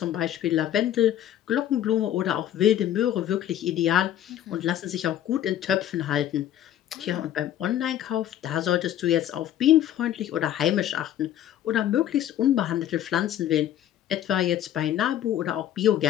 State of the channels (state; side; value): quieter; right; 11.5 dB